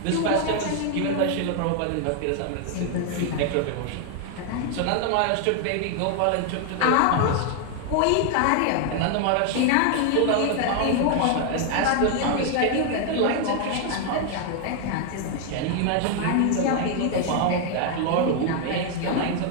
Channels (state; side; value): different; both; correlation 0.00